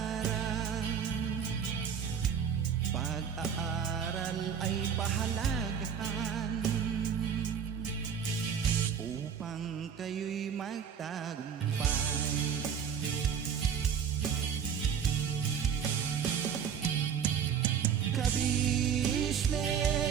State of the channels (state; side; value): quieter; left; 7.6 dB